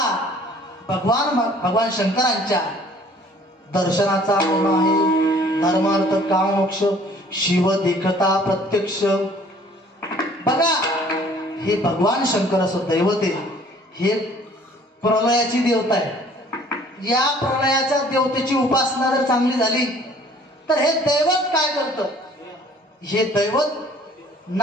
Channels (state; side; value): normal; both; correlation 0.54